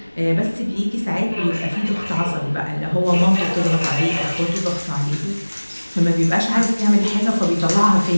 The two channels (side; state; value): both; inverted; correlation -1.00